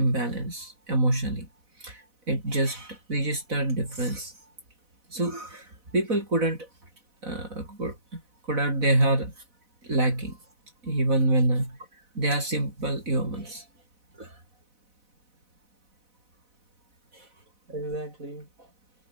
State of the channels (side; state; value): left; late; 4.0 ms